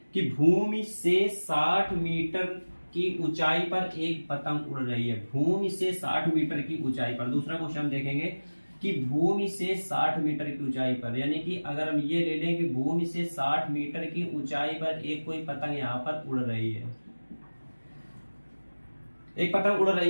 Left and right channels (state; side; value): inverted; both; correlation -1.00